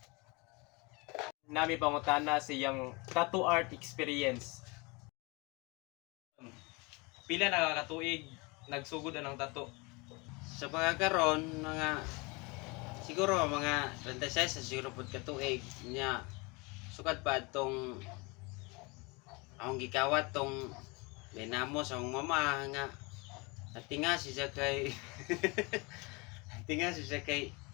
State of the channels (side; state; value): right; quieter; 27.7 dB